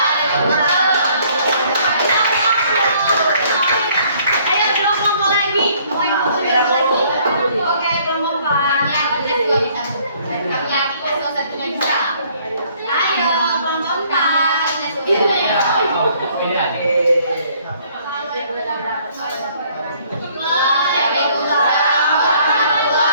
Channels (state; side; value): inverted; both; correlation -0.61